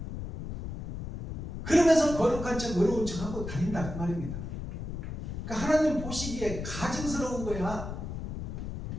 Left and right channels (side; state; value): left; noise; rumble, 6 dB below the sound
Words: 그러면서 거룩한 척 어려운 척 하고 다닌다 그 말입니다. 그러니까 하나님 보시기에 가증스러운 거야.